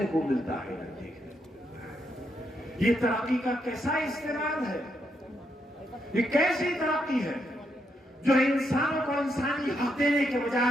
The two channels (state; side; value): normal; both; correlation 0.79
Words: को मिलता है न देखने को मिलता है। ये तरक्की का कैसा इस्तेमाल है? ये कैसी तरक्की है जो इंसानों को इंसानी हक देने के